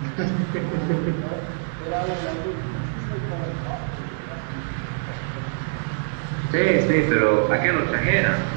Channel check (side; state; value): left; silent; 62 dB below the other